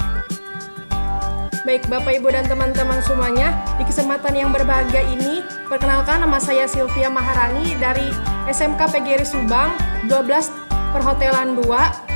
baik Bapak, Ibu, dan teman-teman semuanya, di kesempatan yang berbahagia ini, perkenalkan, nama saya Sylvia Maharani dari SMK PGRI Subang 12 Perhotelan 2.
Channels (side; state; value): both; inverted; correlation -1.00